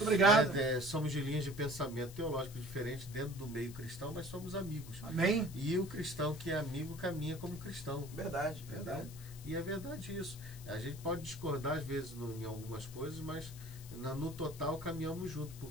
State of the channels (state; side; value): noise; left; hiss, 17 dB below the sound